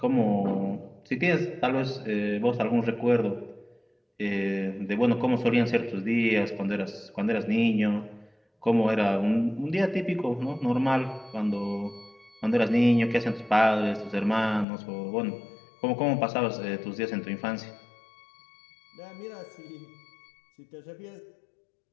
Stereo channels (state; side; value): drops out; right; at 14.7 s